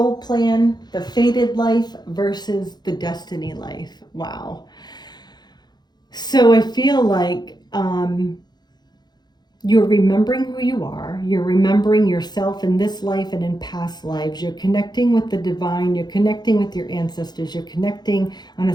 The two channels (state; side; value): late; right; 0.20 ms